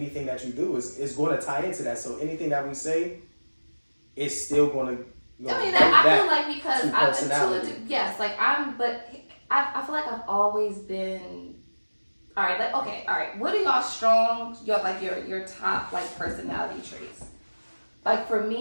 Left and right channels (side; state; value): both; inverted; correlation -1.00